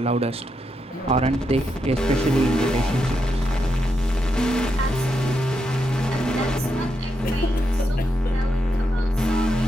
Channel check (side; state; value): both; normal; correlation 0.83